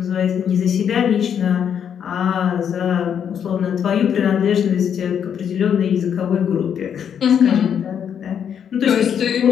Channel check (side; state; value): right; quieter; 8.3 dB